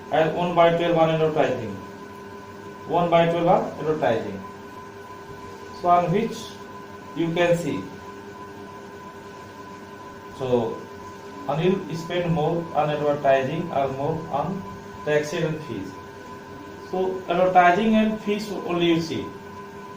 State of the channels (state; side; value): identical; both; correlation 1.00